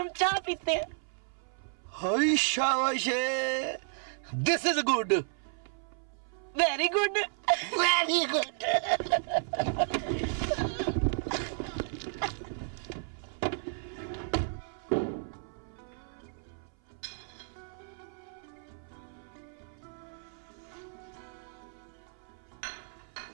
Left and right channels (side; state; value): left; silent; 56 dB below the other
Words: चाय पीते हैं। हाय शाबाश, this is good, very good, very good.